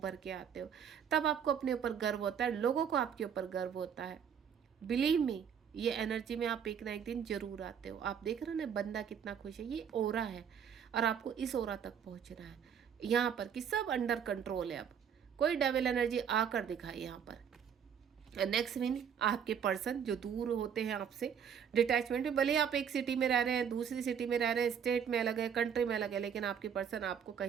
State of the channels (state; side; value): quieter; left; 7.9 dB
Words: के आते हो। तब आपको अपने ऊपर गर्व होता है, लोगों को आपके ऊपर गर्व होता है। बिलीव मी, ये एनर्जी में आप एक ना एक दिन जरूर आते हो। आप देख रहे हो ना बंदा कितना खुश है, ये ओरा है और आपको इस ओरा तक पहुंचना है। यहाँ पर कि सब अंडर कंट्रोल है। अब कोई डेविल एनर्जी आकर दिखाए यहाँ पर। नेक्स्ट मीन आपके पर्सन जो दूर होते हैं आपसे, डिटैचमेंट में, भले ही आप एक सिटी में रह रहे हैं, दूसरी सिटी में रह रहे हैं, स्टेट में अलग है, कंट्री में अलग है, लेकिन आपके पर्सन आपको